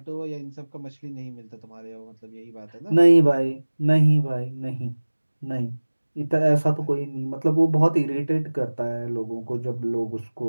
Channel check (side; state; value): both; inverted; correlation -1.00